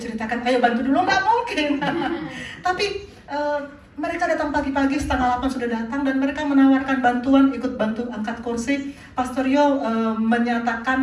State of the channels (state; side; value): identical; both; correlation 1.00